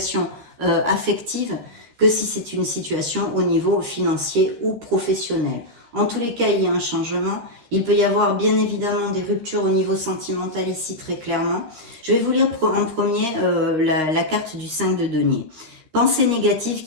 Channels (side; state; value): left; late; 13 ms